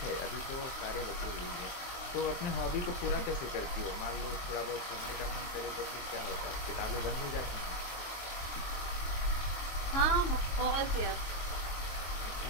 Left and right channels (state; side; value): late; right; 22 ms